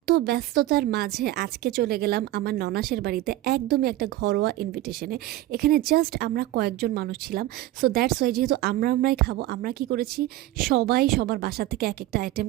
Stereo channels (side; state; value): left; quieter; 15.5 dB